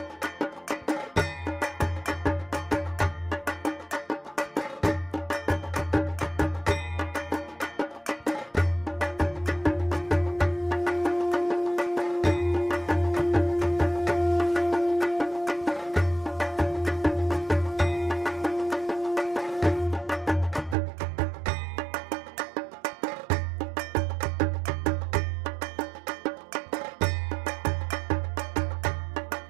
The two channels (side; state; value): left; drops out; at 20.8 s